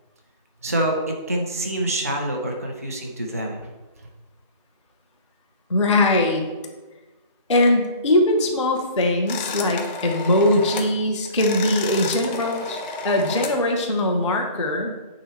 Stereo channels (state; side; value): inverted; both; correlation -0.43